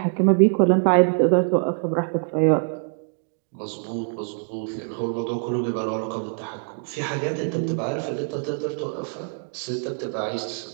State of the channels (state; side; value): silent; left; 60 dB below the other